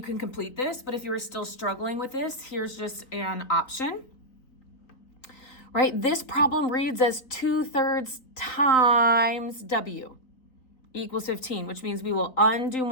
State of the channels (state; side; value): late; right; 3.9 ms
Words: can complete this, but if you are still struggling with this, here's just an option. Right, this problem reads as 2/3 times w equals 15, which means we will undo